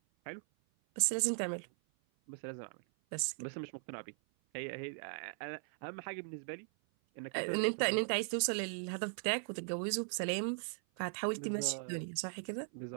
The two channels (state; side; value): silent; left; 52 dB below the other